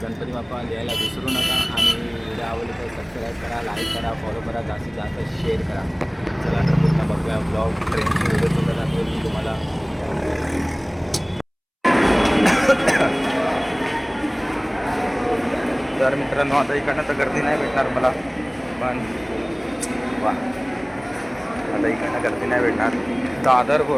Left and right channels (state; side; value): identical; both; correlation 1.00